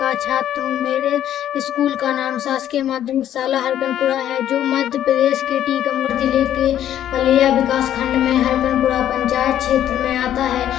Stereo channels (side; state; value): right; quieter; 11.2 dB